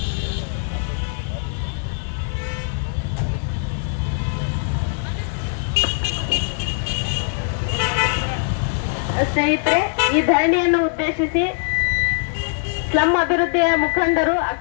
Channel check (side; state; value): right; silent; 65 dB below the other